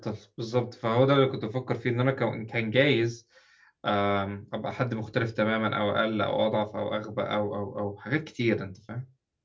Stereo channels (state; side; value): identical; both; correlation 1.00